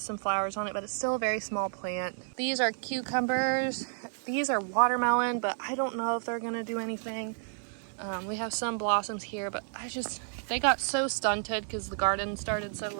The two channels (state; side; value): silent; left; 57 dB below the other